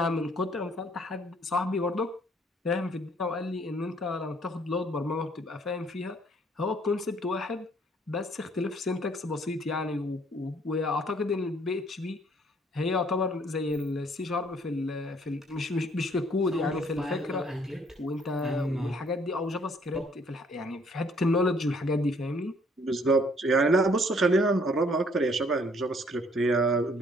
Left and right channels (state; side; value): normal; both; correlation 0.62